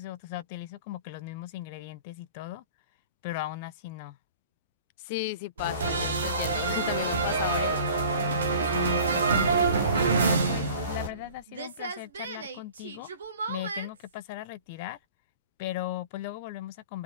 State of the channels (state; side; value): inverted; both; correlation -0.45